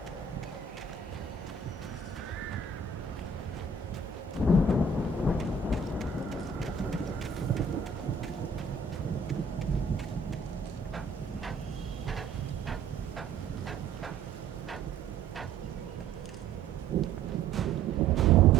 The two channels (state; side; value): quieter; left; 4.4 dB